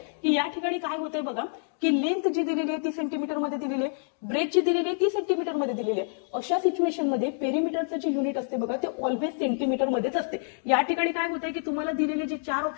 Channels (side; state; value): right; silent; digital silence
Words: की या ठिकाणी काय होतंय बघा की लेंथ जी दिलेली आहे ती सेंटीमीटर मध्ये दिलेली आहे, ब्रेथ जी दिलेली आहे ती सेंटीमीटर मध्ये दिलेली आहे. अशा सिच्युएशन मध्ये पेरिमीटरचं जे युनिट असते बघा ते ऑलवेज सेंटीमीटर मध्येच असते. या ठिकाणी काय होतंय की तुम्हाला दिलेले जे 4